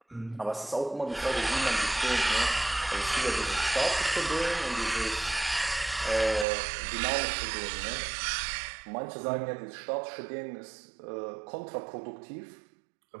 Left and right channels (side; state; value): left; drops out; at 6.5 s